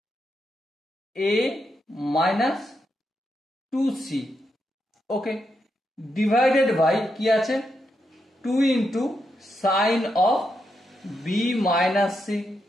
A minus 2c, okay, divided by কি আছে 2 into sine of B minus C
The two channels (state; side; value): normal; both; correlation 0.83